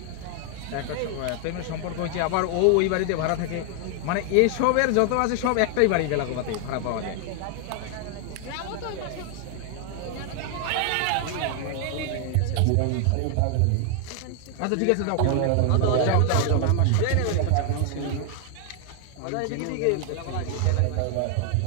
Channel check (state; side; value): different; both; correlation 0.00